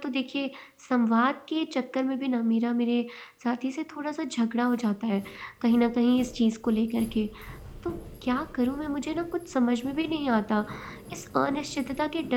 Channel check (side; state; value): both; identical; correlation 1.00